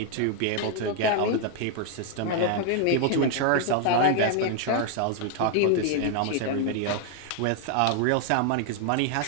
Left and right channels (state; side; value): different; both; correlation 0.00